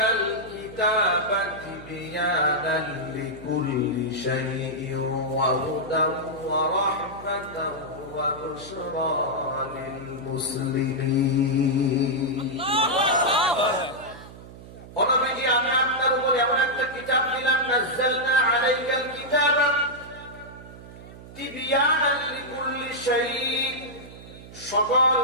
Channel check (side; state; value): right; noise; hum, 17 dB below the sound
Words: কিতাবা তিবয়ানান লিকুল্লি শাইইন ওয়া হুদান ওয়া রাহমাতান ওয়া বুশরা লিল মুসলিমিন। অনবীজি, আমি আপনার উপর এমন একটা কিতাব দিলাম, নাজ্জালনা আলাইকাল কিতাবা তিবয়ানান লিকুল্লি শাইইন, সকল